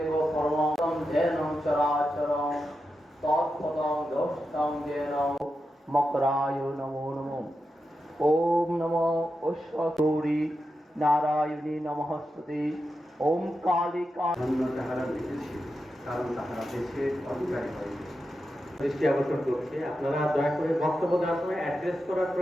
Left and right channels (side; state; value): both; normal; correlation 0.89